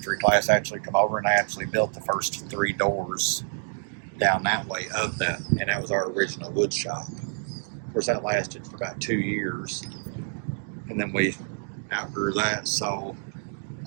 class actually come over, and they actually built the first 3 doors down that way of that, and that was our original wood shop. Of course, that lasted for about 2 years, and then we outgrew that. So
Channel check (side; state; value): left; silent; digital silence